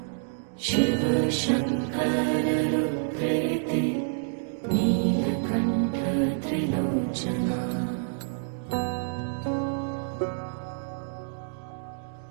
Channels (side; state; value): left; silent; digital silence